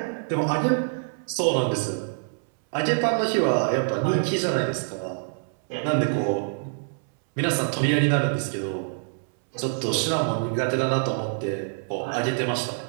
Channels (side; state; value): left; silent; 61 dB below the other